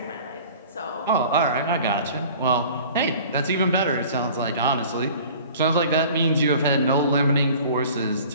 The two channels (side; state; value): both; inverted; correlation -0.45